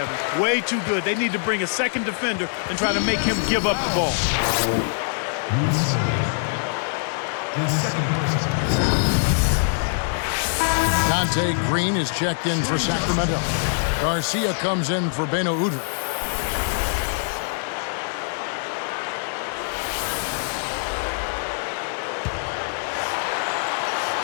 Way too good. They need to bring a second defender and try to make him give up the ball. His second person. Dante Green is checked in for Sacramento. Garcia comes in for Beno Udrich.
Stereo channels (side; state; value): right; silent; digital silence